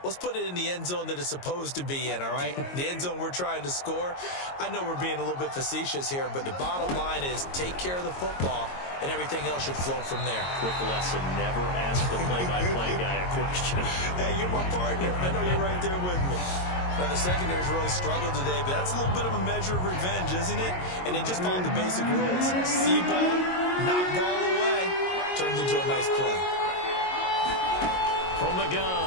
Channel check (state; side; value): late; right; 22 ms